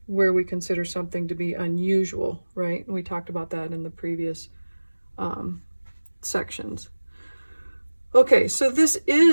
where we consider something to be unusual, right? And we talked about that in the previous sections. Okay, so this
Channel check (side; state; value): both; inverted; correlation -1.00